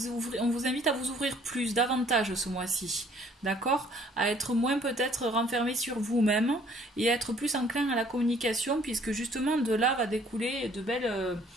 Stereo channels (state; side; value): normal; both; correlation 0.59